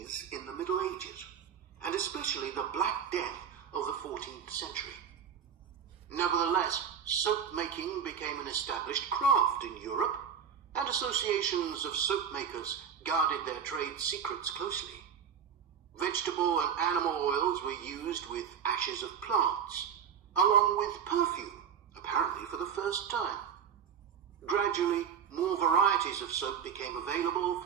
in the Middle Ages, and especially the Black Death of the 14th century. Nevertheless, soap making became an established craft in Europe, and associations of soap makers guarded their trade secrets closely. Vegetable and animal oils were used with ashes of plants, along with perfume, apparently for the first time. Gradually, more varieties of soap became available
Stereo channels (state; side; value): quieter; left; 7.7 dB